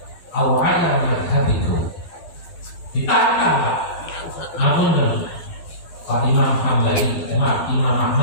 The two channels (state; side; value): late; right; 12 ms